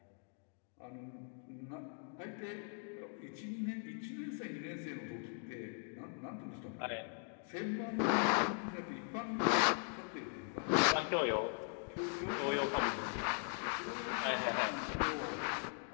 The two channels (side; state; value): right; silent; 51 dB below the other